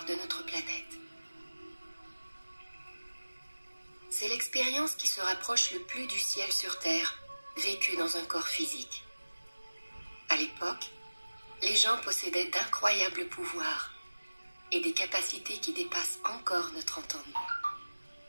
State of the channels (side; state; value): both; inverted; correlation -1.00